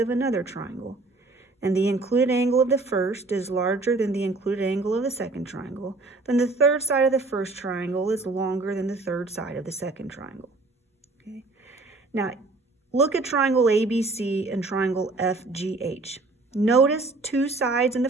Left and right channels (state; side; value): quieter; left; 3.4 dB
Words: another triangle, and the included angle of the first is larger than the included angle of the second triangle, then the third side of the first triangle is longer than the third side of the second triangle. Okay. Now, look at triangle ABC and triangle FGH. Notice 2 sides in the